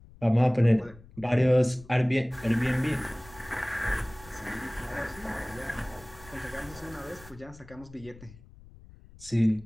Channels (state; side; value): noise; left; rumble, 21 dB below the sound